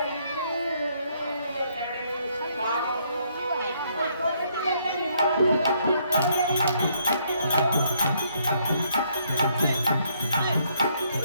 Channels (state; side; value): inverted; both; correlation -0.70